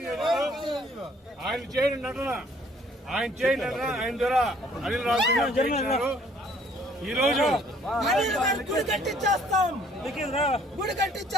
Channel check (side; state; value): both; normal; correlation 0.60